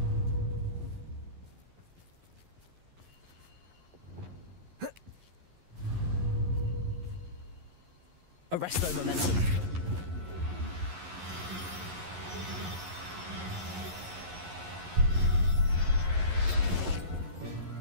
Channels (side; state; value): left; late; 11 ms